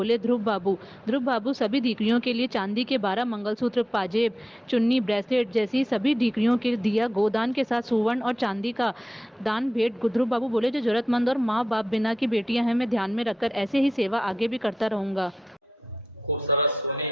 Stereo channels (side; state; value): both; normal; correlation 0.89